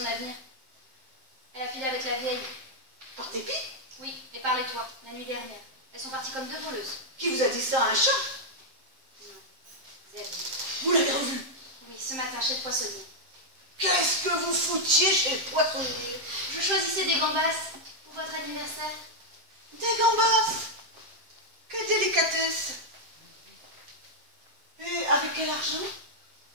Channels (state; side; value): late; left; 7.7 ms